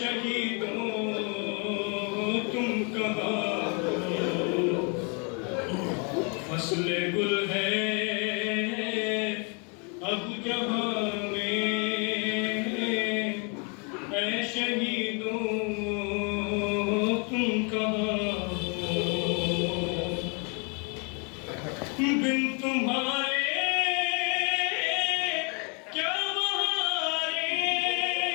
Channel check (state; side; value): quieter; right; 35.5 dB